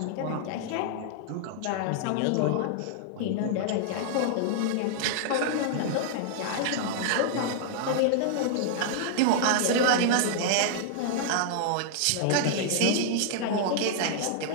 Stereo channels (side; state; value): both; different; correlation -0.01